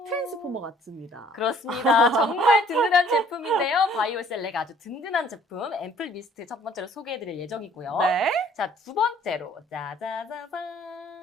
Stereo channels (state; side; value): normal; both; correlation 0.57